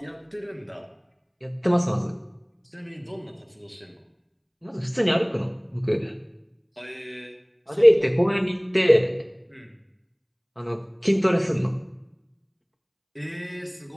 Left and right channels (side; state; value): both; identical; correlation 1.00